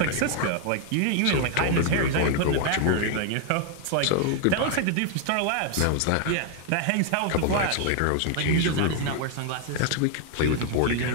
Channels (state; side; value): different; both; correlation 0.00